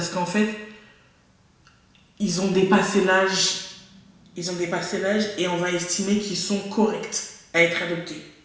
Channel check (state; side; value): identical; both; correlation 1.00